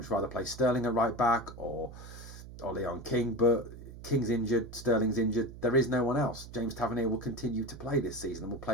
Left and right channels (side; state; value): right; noise; hum, 14 dB below the sound